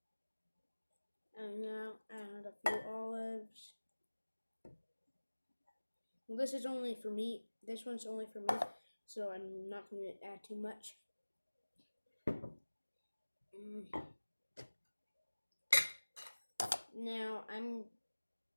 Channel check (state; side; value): inverted; both; correlation -1.00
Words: And now add a few olives. Well, this is only for me. This one's only for me, so I'm not going to add too much. Now I'm